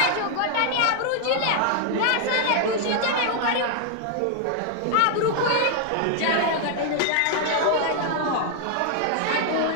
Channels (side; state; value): both; different; correlation 0.00